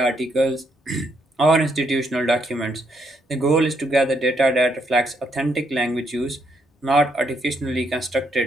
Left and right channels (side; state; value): both; normal; correlation 0.75